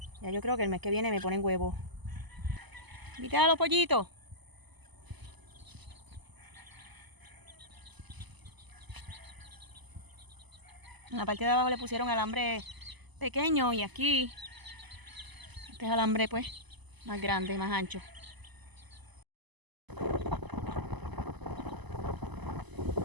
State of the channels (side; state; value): left; late; 1.0 ms